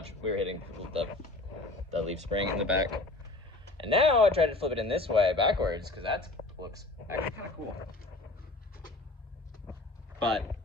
We were hitting the leaf spring in the back. And now I tried to flip it in this way backwards, because that looks actually kind of cool. But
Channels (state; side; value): quieter; right; 3.0 dB